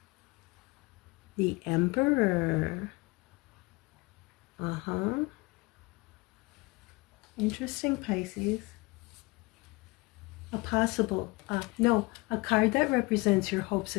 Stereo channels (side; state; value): right; quieter; 24.7 dB